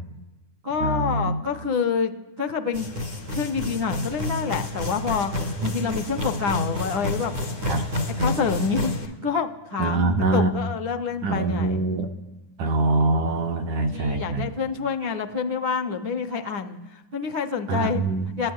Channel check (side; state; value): left; late; 10 ms